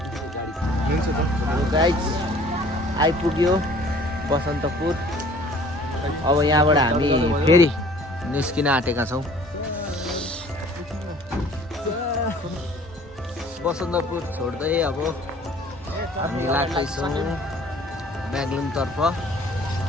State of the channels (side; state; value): both; normal; correlation 0.52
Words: गाइस, आइपुग्यो बसन्तपुर। अब यहाँबाट हामी फेरि निस्किन आँटेका छौं। बसन्तपुर छोड्दै अब हामी लाग्दैछौँ ब्यागलुङ तर्फ।